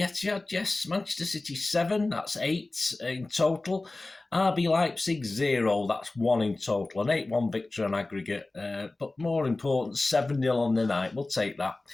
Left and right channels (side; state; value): right; quieter; 3.1 dB